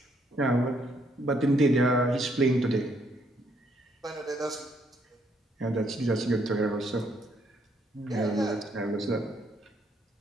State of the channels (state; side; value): normal; both; correlation 0.71